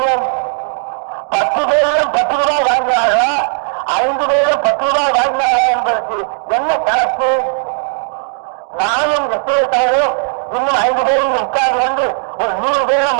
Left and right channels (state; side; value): silent; left; digital silence